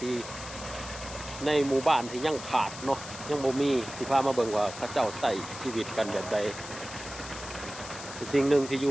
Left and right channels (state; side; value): noise; left; hiss, 12 dB below the sound